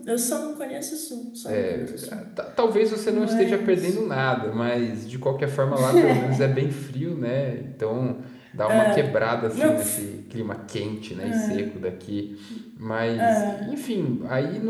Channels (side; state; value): both; identical; correlation 1.00